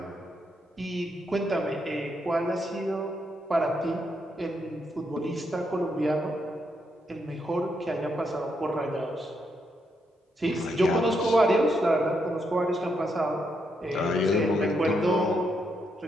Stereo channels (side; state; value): both; normal; correlation 0.79